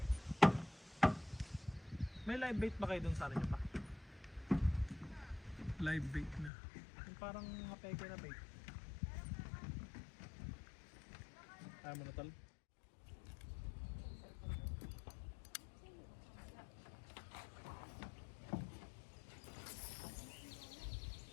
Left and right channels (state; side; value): drops out; right; at 6.5 s